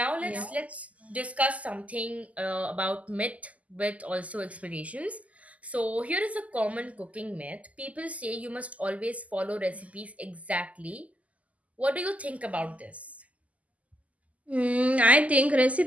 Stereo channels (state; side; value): late; left; 0.072 ms